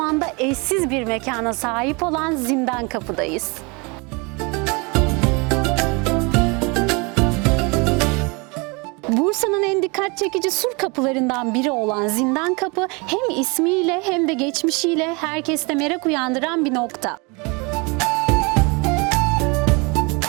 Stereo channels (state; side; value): quieter; left; 29.1 dB